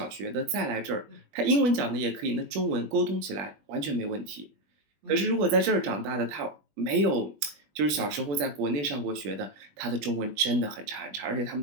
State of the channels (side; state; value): left; late; 20 ms